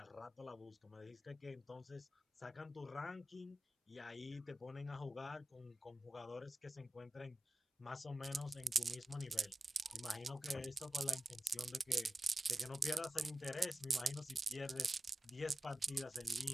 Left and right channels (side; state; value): both; normal; correlation 0.93